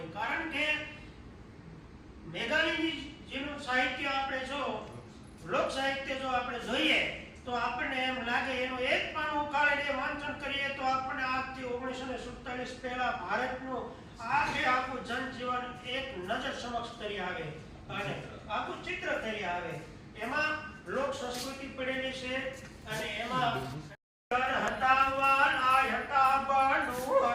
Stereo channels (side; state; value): both; identical; correlation 1.00